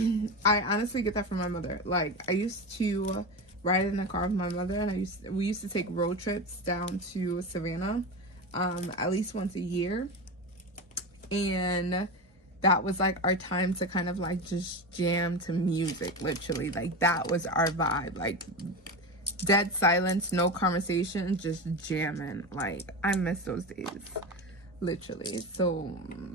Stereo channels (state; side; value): normal; both; correlation 0.22